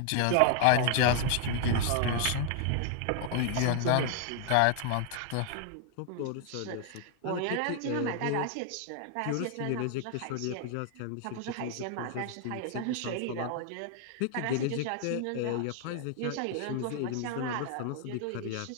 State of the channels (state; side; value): different; both; correlation 0.00